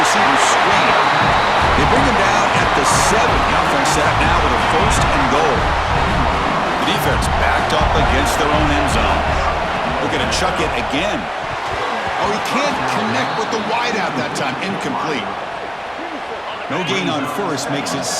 receiver screen. They bring him down at the 7. The offense set up now with a 1st and goal. The defense backed up against their own end zone. Looking to chuck it again. Oh, he can't connect with the wideout that time. Incomplete. No gain on 1st makes it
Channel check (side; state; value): both; identical; correlation 1.00